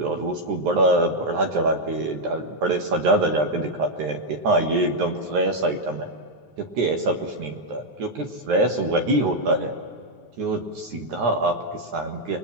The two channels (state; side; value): late; left; 9.5 ms